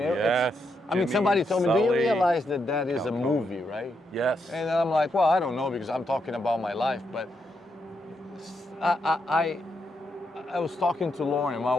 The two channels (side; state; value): both; normal; correlation 0.81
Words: mean, somebody told me, do you realize that that is a movie, right? Yes. And I'm like, well, I don't know because I'm talking about my life, but I was talking to Lauren, my